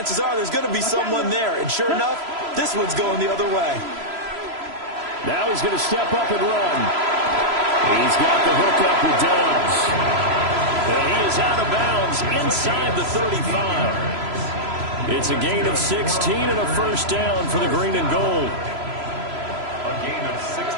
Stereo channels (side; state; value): left; late; 3.0 ms